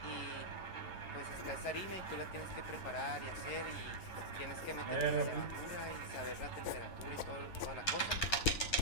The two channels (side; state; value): right; late; 11 ms